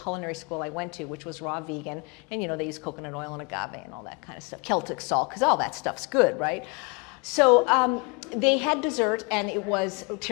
school I went to, which was raw vegan. And they use coconut oil and agave and all that kind of stuff. Celtic salt, because all that stuff's good, right? So they had dessert, and it was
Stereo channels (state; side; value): quieter; right; 30.8 dB